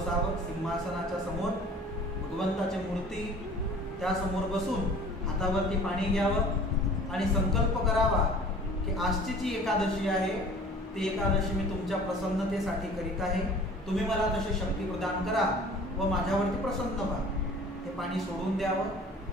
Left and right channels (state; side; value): normal; both; correlation 0.47